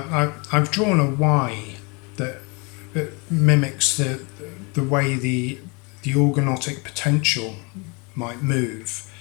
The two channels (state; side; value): quieter; right; 30.1 dB